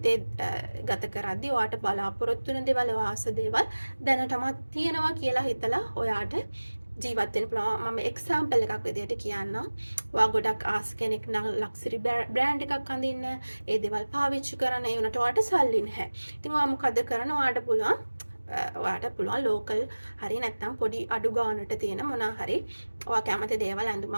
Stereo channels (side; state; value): both; inverted; correlation -1.00